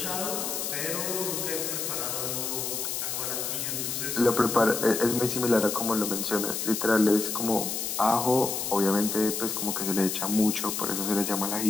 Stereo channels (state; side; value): noise; left; hiss, 2 dB below the sound